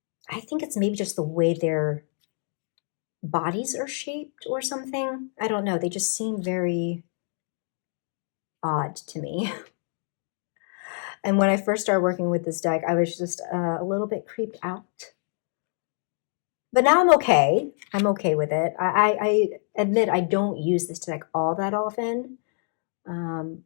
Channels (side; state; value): right; silent; 56 dB below the other